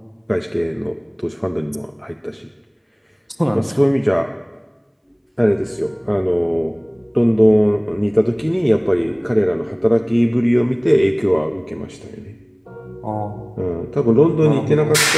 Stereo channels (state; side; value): identical; both; correlation 1.00